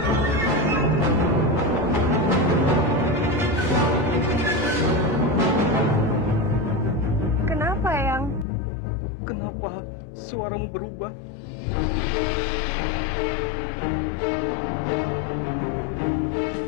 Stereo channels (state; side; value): drops out; right; at 8.5 s